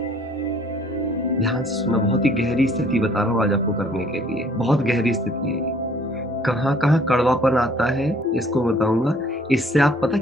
ध्यान से सुना, बहुत ही गहरी स्थिति बता रहा हूँ आज आपको करने के लिए, बहुत गहरी स्थिति है ये। कहाँ कहाँ कड़वापन आता है इसको बताऊंगा। इससे आप पता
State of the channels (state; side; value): normal; both; correlation 0.57